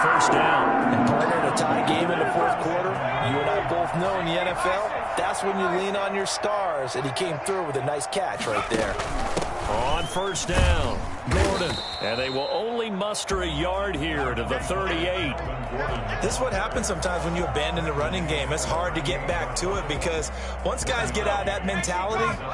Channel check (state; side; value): identical; both; correlation 1.00